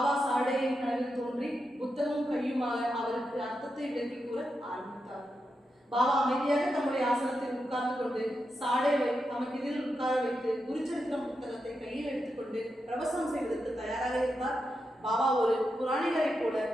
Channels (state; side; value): normal; both; correlation 0.87